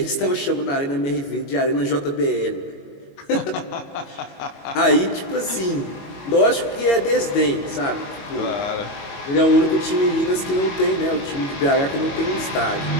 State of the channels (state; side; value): late; right; 22 ms